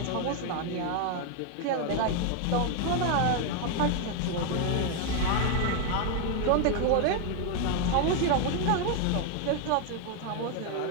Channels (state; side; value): different; both; correlation 0.01